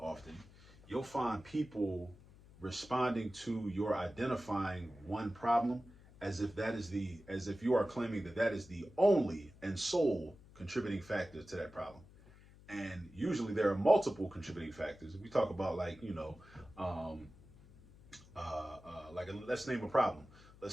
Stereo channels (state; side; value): noise; left; hum, 22 dB below the sound